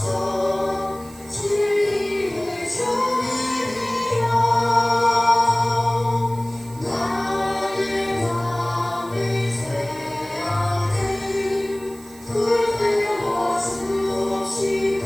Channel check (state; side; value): noise; right; hiss, 21 dB below the sound